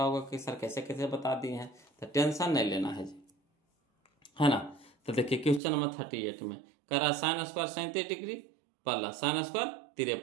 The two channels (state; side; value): drops out; left; at 5.6 s